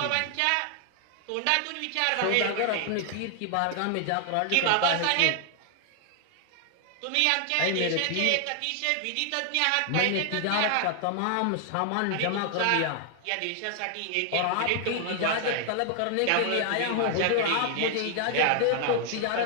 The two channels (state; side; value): different; both; correlation 0.00